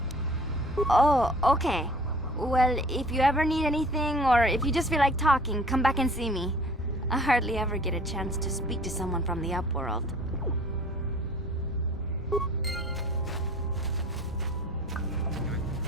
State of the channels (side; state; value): both; normal; correlation 0.49